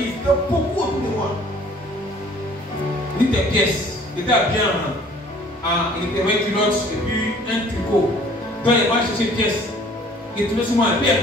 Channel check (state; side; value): normal; both; correlation 0.54